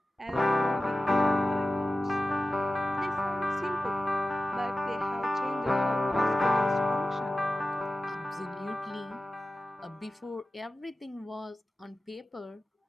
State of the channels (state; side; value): normal; both; correlation 0.95